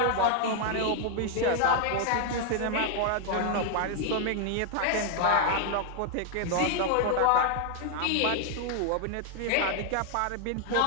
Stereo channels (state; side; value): different; both; correlation 0.00